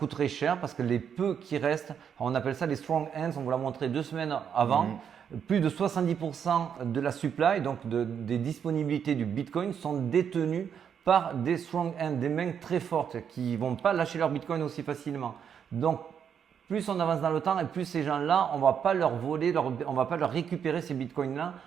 cher parce que les peu qui restent, on appelle ça les strong hands, on vous l'a montré 2 semaines avant, plus de 70% de la supply, donc des disponibilités du Bitcoin, sont détenues par des strong hands, des mains très fortes qui ne vont pas lâcher leur Bitcoin aussi facilement. Donc, plus on avance dans le temps et plus ces gens-là, on ne va pas leur voler, on ne va pas leur récupérer ces bitcoins-là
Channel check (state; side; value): quieter; left; 7.9 dB